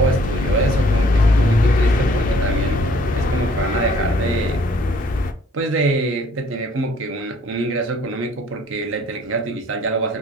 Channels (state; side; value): normal; both; correlation 0.59